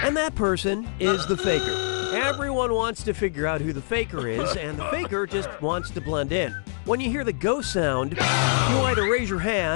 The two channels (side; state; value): right; silent; digital silence